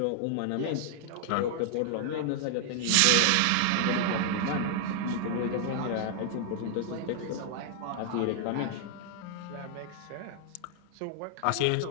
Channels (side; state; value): both; different; correlation 0.00